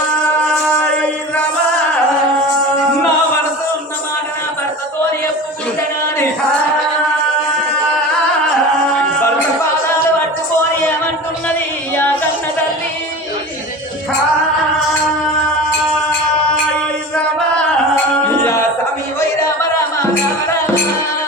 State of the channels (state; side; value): normal; both; correlation 0.33